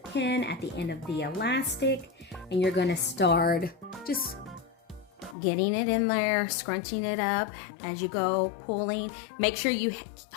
at the end of the elastic, and you're going to start just getting it in there, scrunching it up as you go, pulling. Make sure you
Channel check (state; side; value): drops out; right; at 5.4 s